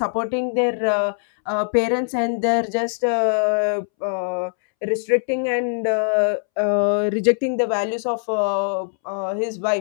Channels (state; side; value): silent; right; 65 dB below the other